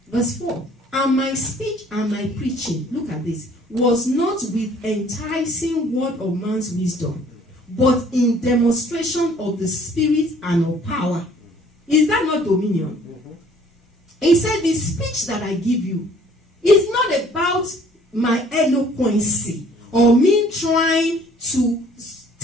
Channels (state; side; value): normal; both; correlation 0.56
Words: Verse 4. And my speech and my preaching, look at this, was not with enticing word of man's wisdom, but in demonstration of the Spirit and of power. Is that not dominion? He said, the speech that I give you is not about my eloquency or me trying to